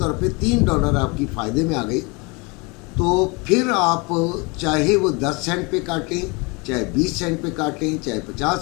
पे $3 आपकी फ़ायदे में आ गई तो फिर आप चाहे वो 10 सेंट पे काटें, चाहे 20 सेंट पे काटें, चाहे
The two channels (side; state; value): right; quieter; 28.6 dB